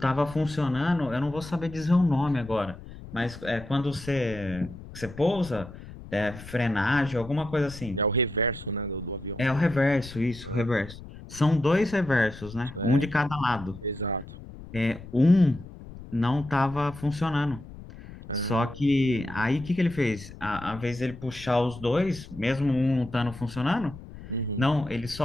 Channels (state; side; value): noise; left; rumble, 15 dB below the sound